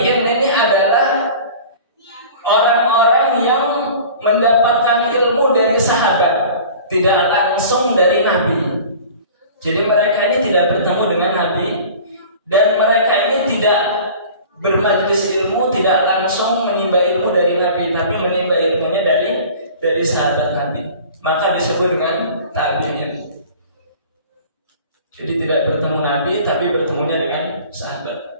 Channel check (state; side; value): inverted; both; correlation -0.43